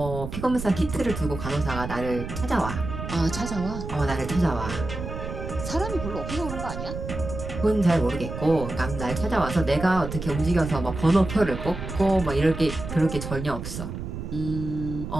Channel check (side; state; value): right; noise; rumble, 7 dB below the sound